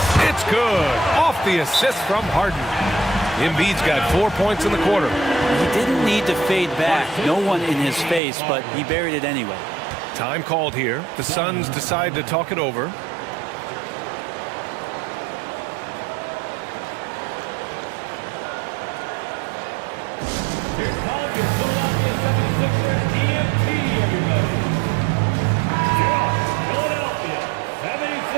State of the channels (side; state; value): left; drops out; at 8.2 s